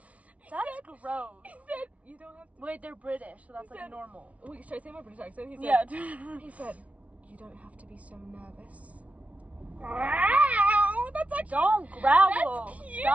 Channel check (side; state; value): left; late; 0.066 ms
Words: That's gross. He said, "You don't have to." Wait, they're British, so that's He like said- normal. Wait, should I say my British accent? He said, Yeah. He said, "You don't have to be so nervous." Wow, that's actually... Don't growl. That's cute!